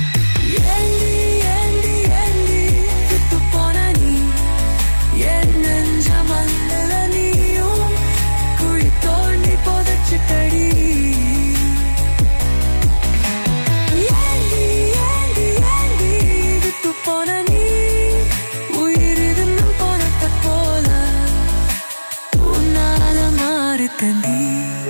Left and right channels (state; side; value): inverted; both; correlation -1.00